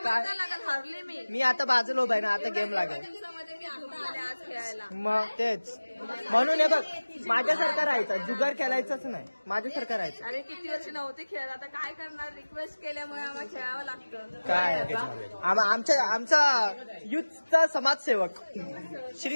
काय हरले मी आता बाजूला उभा आहे ना. आता गेम लागेल मग तेच म्हणून हे बघ माझ्यासारखं राहायचं. जुगार खेळायचंच नाही. माझ्यासारखं राहायचं. अरे किती वर्ष नव्हते खेळत आता काय करणार. रिक्वेस्ट केल्यामुळे आम्हाला खेळावं लागतं. काय आमचा युथचा समाजसेवक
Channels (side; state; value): both; inverted; correlation -1.00